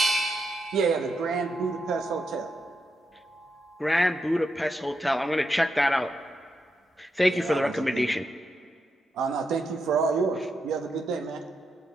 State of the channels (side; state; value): both; normal; correlation 0.84